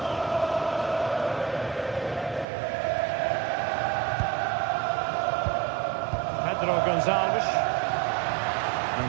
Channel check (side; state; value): left; drops out; at 2.5 s